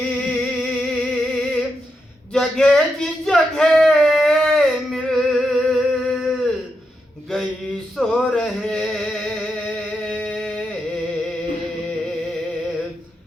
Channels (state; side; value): normal; both; correlation 0.84